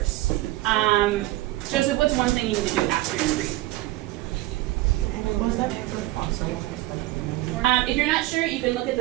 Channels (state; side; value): quieter; left; 17.6 dB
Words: Joseph, what's one thing you need to do after you read? If you're not sure, you can look at